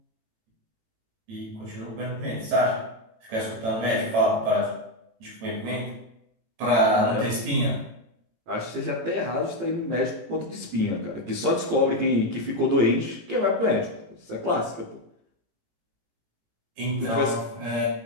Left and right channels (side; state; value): left; late; 18 ms